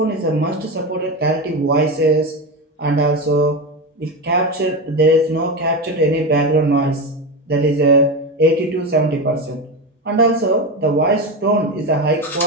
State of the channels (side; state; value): both; normal; correlation 0.18